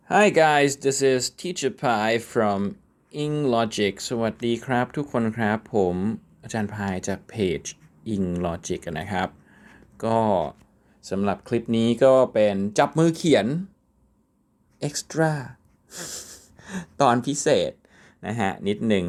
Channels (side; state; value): both; identical; correlation 1.00